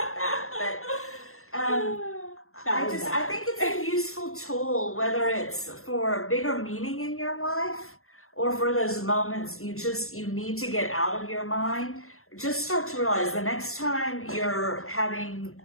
that. But I think it's a useful tool, whether it's for bigger meaning in your life or for those moments you need to get out of your mind. Just start to realize the next time you're having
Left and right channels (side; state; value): right; late; 0.62 ms